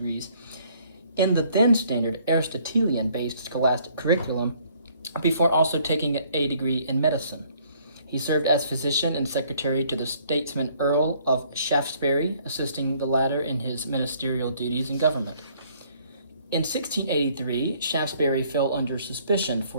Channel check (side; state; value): both; inverted; correlation -0.62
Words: in the then standard Aristotelian-based scholastic curriculum, before also taking a degree in medicine. He served as physician and secretary to the statesman Earl of Shaftesbury, assisting the latter in his ministerial duties in government. In 1683, Shaftesbury fell under suspicion